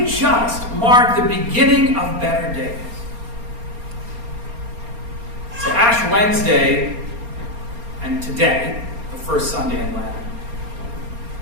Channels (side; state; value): left; late; 4.3 ms